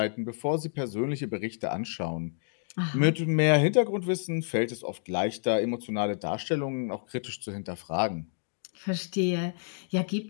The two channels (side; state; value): right; silent; digital silence